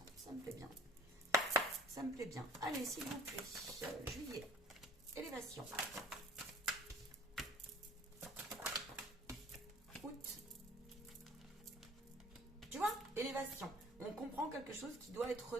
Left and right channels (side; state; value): both; normal; correlation 0.50